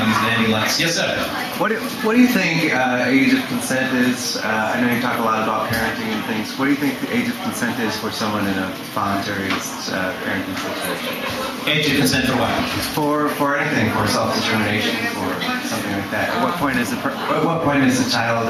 lights. Yes, sir. What do you think age of consent is? I know you talk a lot about parenting and things. What do you think the age of consent is for someone in a voluntary parenting situation? Age of consent for what? For anything, for self-determination, for something like that. At what point is a child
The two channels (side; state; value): both; identical; correlation 1.00